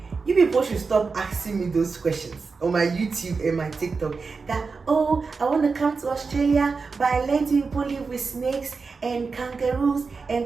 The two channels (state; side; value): quieter; left; 4.6 dB